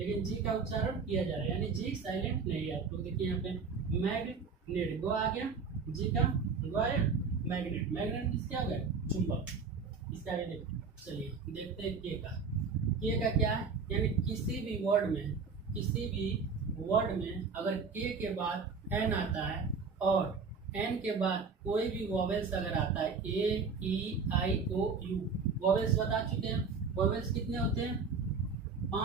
जी का उच्चारण किया जा रहा है, यानी जी साइलेंट नहीं है। आप लोग देखिए यहाँ पे मैग्नेट, गो आ गया, जी का गो आया, मैग्नेट, मैग्नेट क्या हो गया, चुंबक। इसका आगे देखते, चलिए देखते हैं के का। के का क्या है, यानी किसी भी वर्ड में, किसी भी वर्ड में अगर के बाद एन आता है और एन के बाद कोई भी वॉवेल्स अगर आता है, ए ई आई ओ यू, वॉवेल्स बता चुके हैं, वॉवेल्स कितने होते हैं,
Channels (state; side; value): quieter; left; 5.1 dB